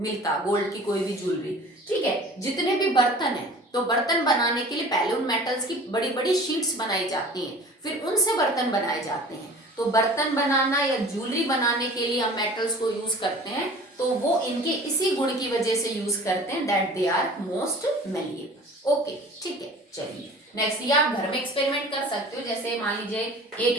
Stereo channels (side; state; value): both; normal; correlation 0.43